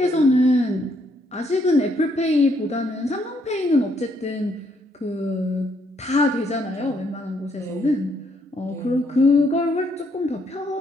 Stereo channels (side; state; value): both; normal; correlation 0.72